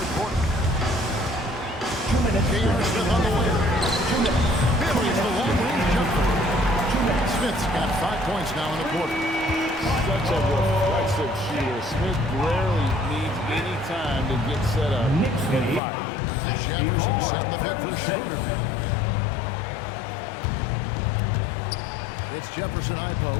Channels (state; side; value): drops out; right; at 15.8 s